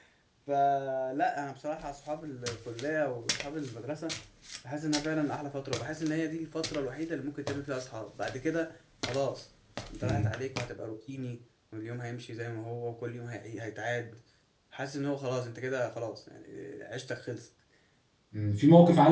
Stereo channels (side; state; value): both; identical; correlation 1.00